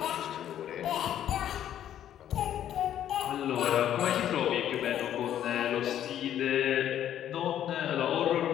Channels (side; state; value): right; quieter; 10.9 dB